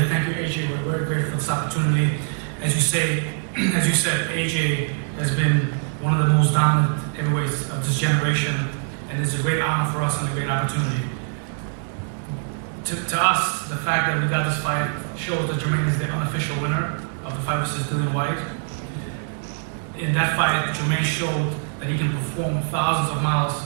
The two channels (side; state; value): left; silent; 63 dB below the other